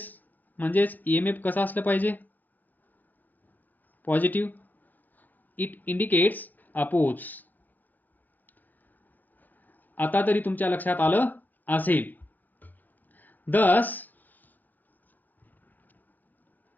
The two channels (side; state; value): right; late; 0.080 ms